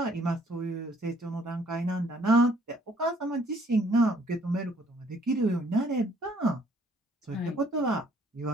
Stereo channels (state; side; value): normal; both; correlation 0.62